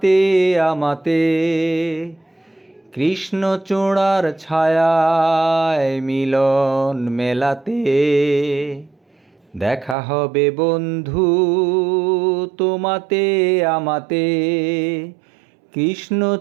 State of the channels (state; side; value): drops out; left; at 10.0 s